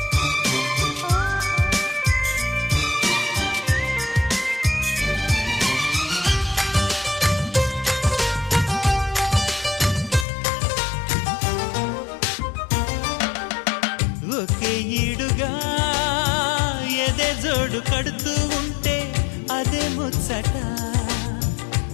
ఒకే ఈడుగా ఎదే జోడు కడుతూ ఉంటే అదే ముచ్చట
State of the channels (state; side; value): drops out; right; at 10.2 s